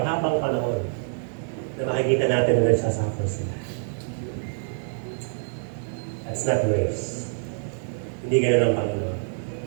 panahon na makikita natin na nagsasuffer sila. That's not grace. Hindi gano'n ang Panginoon.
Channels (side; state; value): left; silent; digital silence